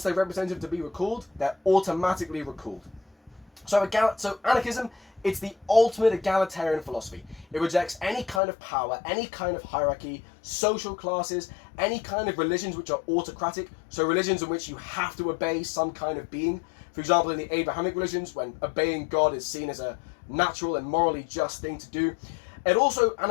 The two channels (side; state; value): right; drops out; at 8.4 s